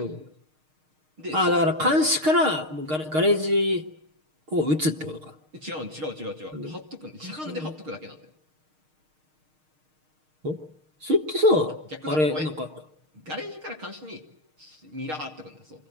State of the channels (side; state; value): left; late; 6.5 ms